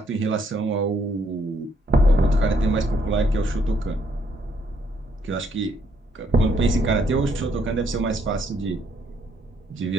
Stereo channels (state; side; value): normal; both; correlation 0.70